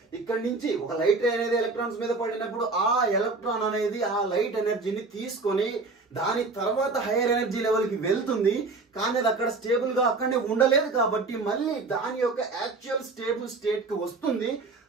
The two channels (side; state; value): left; quieter; 3.8 dB